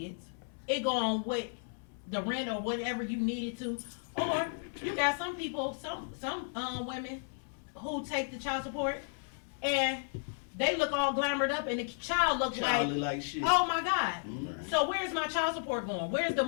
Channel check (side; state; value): right; silent; 55 dB below the other